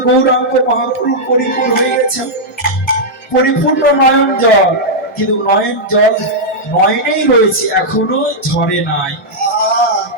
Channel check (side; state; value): both; normal; correlation -0.06